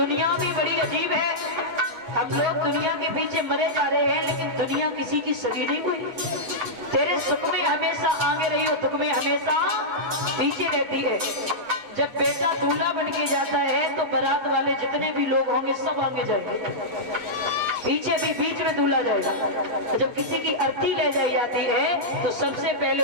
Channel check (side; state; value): left; late; 8.3 ms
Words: भी बड़ी अजीब है। हम लोग दुनिया के पीछे मरे जा रहे हैं, लेकिन दुनिया किसी की सगी नहीं हुई। तेरे सुख में हमेशा आगे रही हो, दुख में हमेशा पीछे रहती है। जब बेटा दूल्हा बन के जाता है तो बारात वाले जितने भी लोग होंगे सब आगे जाएंगे, पीछे भी बीच में दूल्हा जाएगा। जब किसी की अर्थी ले जाई जाती है तो सबसे पहले